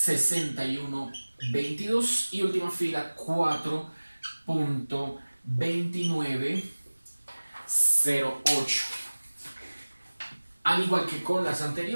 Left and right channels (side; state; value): both; inverted; correlation -1.00